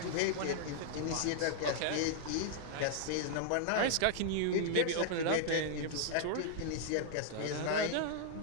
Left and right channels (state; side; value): different; both; correlation -0.01